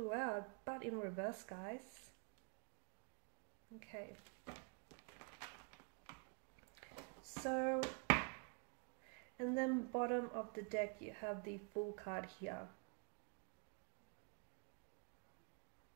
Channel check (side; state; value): left; quieter; 37.2 dB